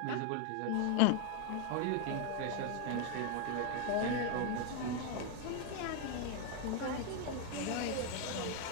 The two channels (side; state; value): both; different; correlation 0.01